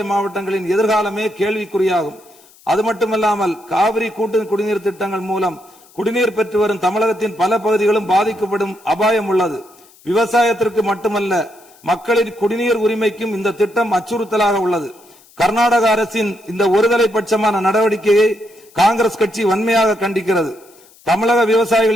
மாவட்டங்களின் எதிர்காலமே கேள்விக்குறியாகும். அது மட்டுமல்லாமல் காவிரி கூட்டு குடிநீர் திட்டங்கள் மூலம் குடிநீர் பெற்று வரும் தமிழகத்தின் பல பகுதிகளும் பாதிக்கப்படும் அபாயம் உள்ளது. விவசாயத்திற்கு மட்டுமல்ல, மக்களின் குடிநீர் உரிமைக்கும் இந்த திட்டம் அச்சுறுத்தலாக உள்ளது. கர்நாடக அரசின் இந்த ஒருதலை பட்சமான நடவடிக்கையை காங்கிரஸ் கட்சி வன்மையாக கண்டிக்கிறது. தமிழக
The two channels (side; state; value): left; noise; hiss, 27 dB below the sound